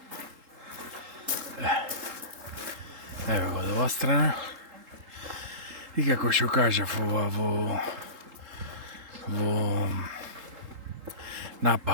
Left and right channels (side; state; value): left; late; 3.8 ms